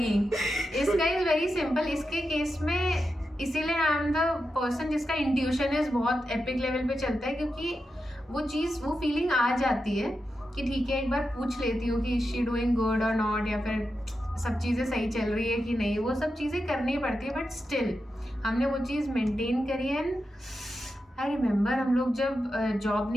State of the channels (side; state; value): both; normal; correlation 0.89